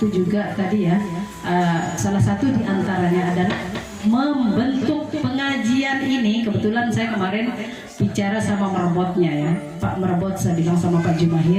juga tadi ya, salah satu diantaranya adalah membentuk pengajian ini. Kebetulan saya kemarin bicara sama merebotnya ya, Pak Merebot, saya bilang sama Pak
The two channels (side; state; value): both; identical; correlation 1.00